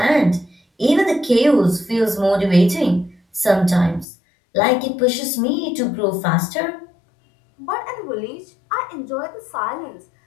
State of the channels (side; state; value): right; drops out; at 4.0 s